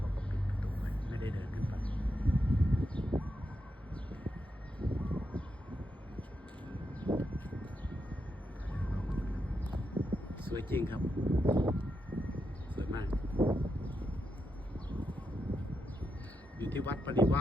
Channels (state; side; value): normal; both; correlation 0.85